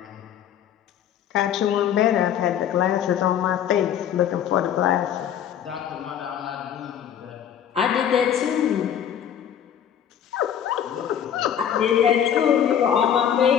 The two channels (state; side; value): quieter; right; 9.3 dB